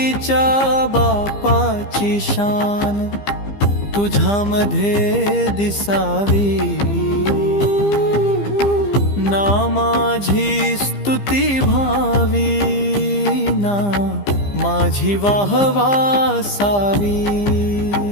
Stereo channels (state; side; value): late; right; 15 ms